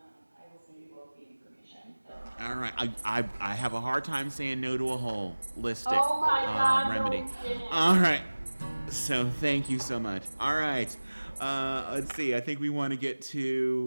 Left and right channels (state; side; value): inverted; both; correlation -1.00